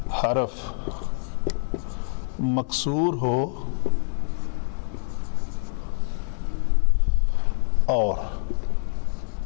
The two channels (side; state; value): right; silent; 61 dB below the other